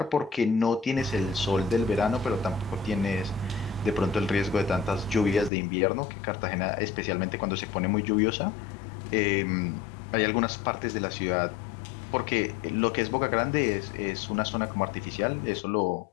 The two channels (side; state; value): right; drops out; at 5.5 s